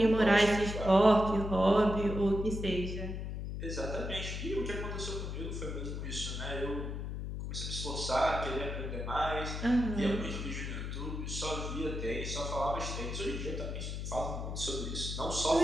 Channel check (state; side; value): noise; left; hum, 5 dB below the sound